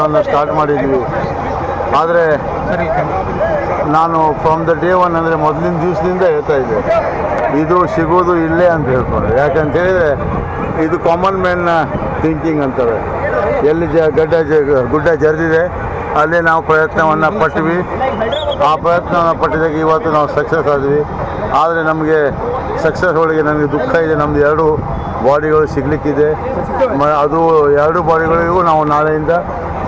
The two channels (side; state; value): both; identical; correlation 1.00